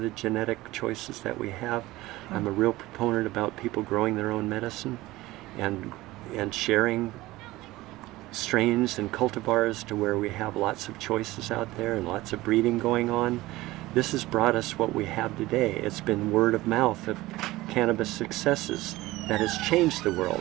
the genetic choices that we have. I'm a real proponent about people growing their own medicine and sharing strains and cultivars to where we have lots of choices out there and lots of breeding going on. This has brought us what we have today. It's been word of mouth of cannabis successes that has changed the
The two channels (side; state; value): left; quieter; 18.4 dB